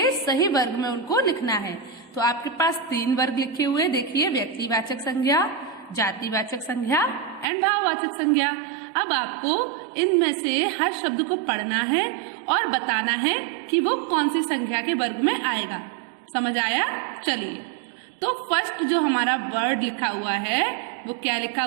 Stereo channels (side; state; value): left; drops out; at 7.5 s